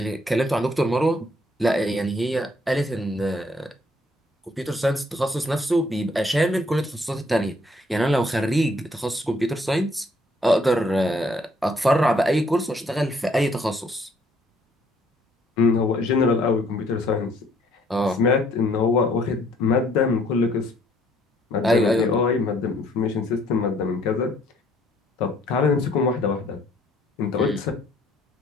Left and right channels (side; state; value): both; normal; correlation 0.64